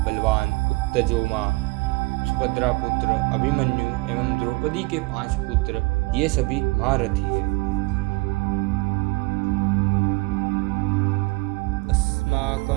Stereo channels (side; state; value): left; quieter; 25.7 dB